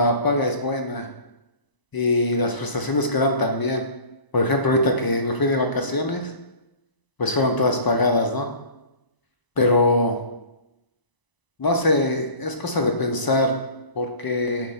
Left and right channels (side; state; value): right; late; 1.0 ms